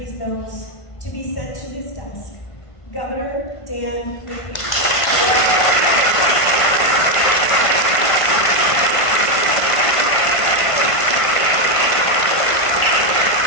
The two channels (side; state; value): right; late; 1.5 ms